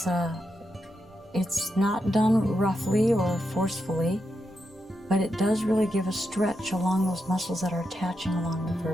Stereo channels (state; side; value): normal; both; correlation 0.85